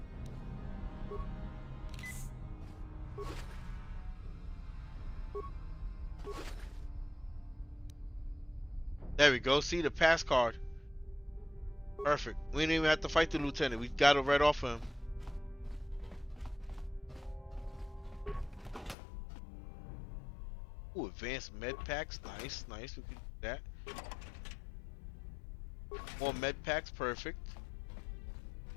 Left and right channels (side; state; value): right; drops out; at 18.9 s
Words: There we go. See the pass card. Perfect. We didn't even have to fight the lieutenant. We got it right off him. Ooh, advanced med packs. Nice, nice. We can do that. More med packs. Perfect.